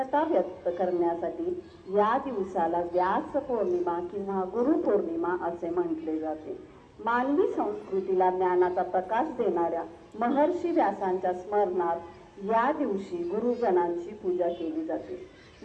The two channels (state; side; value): identical; both; correlation 1.00